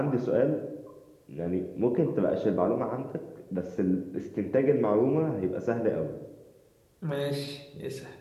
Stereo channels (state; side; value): identical; both; correlation 1.00